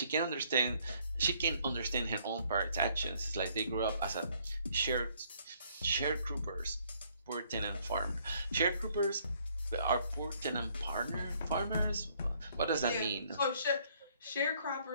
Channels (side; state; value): both; inverted; correlation -0.65